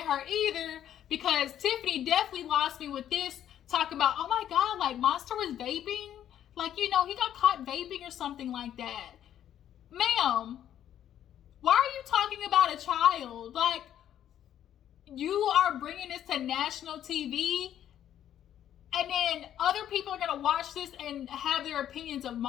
her either because Tiffany definitely lost me with this, talking about, oh my God, like, Monster was vaping, like, you know, he got caught vaping or something like that. Ma'am, why are you talking about a child? Like, you are bringing this to national TV, and then other people are going to watch this and have their opinions of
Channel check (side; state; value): right; quieter; 10.7 dB